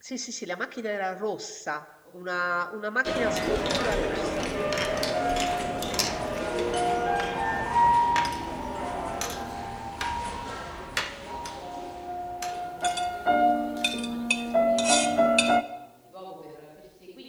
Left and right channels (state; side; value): identical; both; correlation 1.00